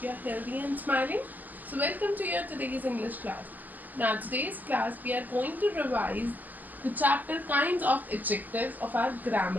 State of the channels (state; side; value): late; left; 0.084 ms